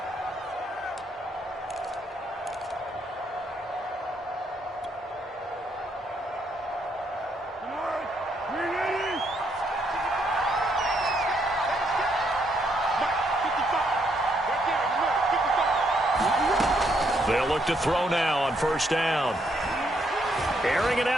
They'll look to throw now on first down. Airing it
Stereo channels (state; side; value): normal; both; correlation 0.74